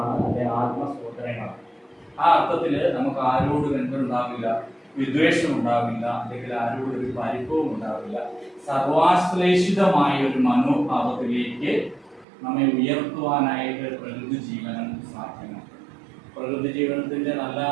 അല്ലെ ആത്മസഹോദരങ്ങളാണ്. ആ അർത്ഥത്തിൽ നമുക്ക് ആരോടും എന്തുണ്ടാവില്ല, വിദ്വേഷം ഉണ്ടാവില്ല, അല്ലെങ്കിൽ ആരോടും ഒരു പരിഭവം ഉണ്ടാവില്ല. സർവാശ്ലേഷിതമായ ഒരു മനോഭാവത്തിലേക്ക് നമ്മെ ഉയർത്തുവാനായിട്ട് പ്രകൃതി ജീവനം സാധ്യമാണ്. പ്രകൃതി ജീവനത്തിന്റെ നല്ല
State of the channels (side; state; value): left; drops out; at 12.2 s